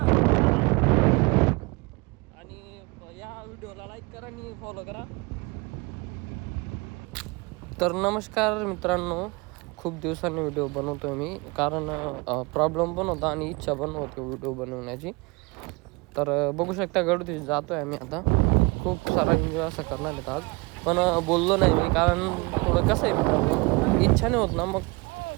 आणि या व्हिडिओला लाईक करा आणि फॉलो करा. तर नमस्कार मित्रांनो, खूप दिवसांनी व्हिडिओ बनवतोय मी कारण प्रॉब्लेम पण होता आणि इच्छा पण होती व्हिडिओ बनवण्याची. तर बघू शकता गडवरती जातोय आम्ही आता. खूप सारा एन्जॉय असं करणार आहेत आज, पण बोललो नाही मी कारण थोडं कसं आहे मित्रांनो, इच्छा नाही होत ना मग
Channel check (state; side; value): quieter; left; 26.6 dB